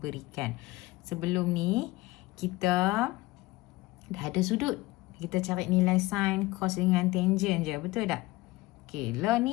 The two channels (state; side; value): quieter; right; 20.0 dB